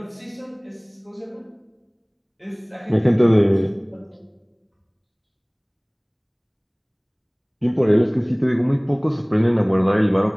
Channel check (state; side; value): identical; both; correlation 1.00